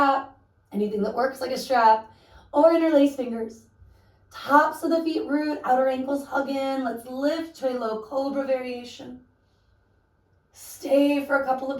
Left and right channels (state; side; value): identical; both; correlation 1.00